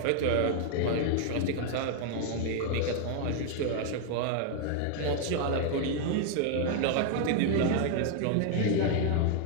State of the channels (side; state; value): both; different; correlation 0.00